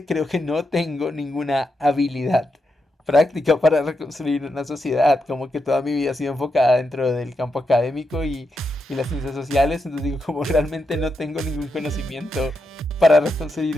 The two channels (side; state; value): both; normal; correlation 0.85